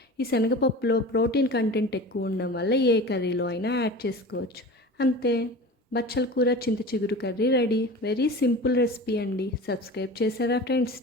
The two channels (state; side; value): normal; both; correlation 0.35